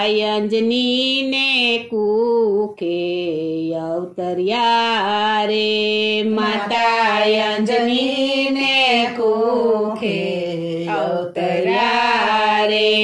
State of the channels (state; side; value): identical; both; correlation 1.00